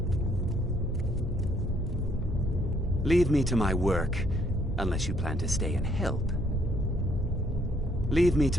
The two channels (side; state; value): both; normal; correlation 0.68